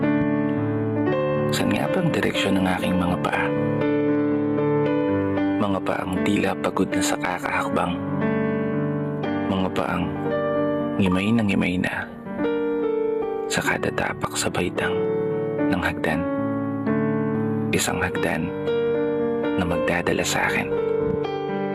saan nga bang direksyon ng aking mga paa? Mga paang tila pagod na sa kakahakbang. Mga paang ngimay na sa kada tapak sa baitang ng hagdan. Isang hagdan na magdadala sa akin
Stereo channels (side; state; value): both; identical; correlation 1.00